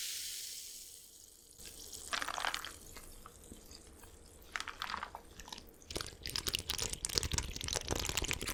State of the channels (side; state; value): both; identical; correlation 1.00